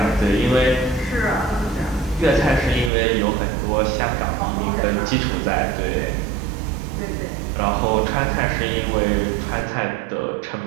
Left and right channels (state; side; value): drops out; left; at 2.9 s